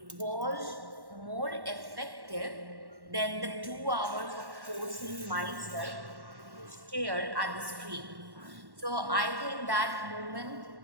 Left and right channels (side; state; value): left; late; 1.1 ms